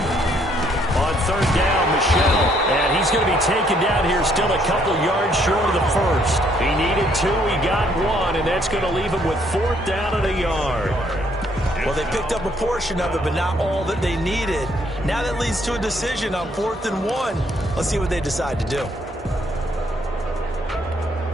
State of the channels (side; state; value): both; normal; correlation 0.68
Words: He's going to be taken down here, still a couple yards short of the first. He needed 2, he got 1, and that's going to leave him with 4th down and a yard. Well, they picked up a portion of it, but not all that they needed. Now that leads to a decision on 4th and 1. Let's see what they decide to do.